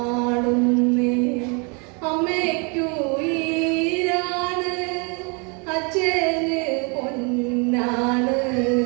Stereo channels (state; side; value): quieter; left; 33.1 dB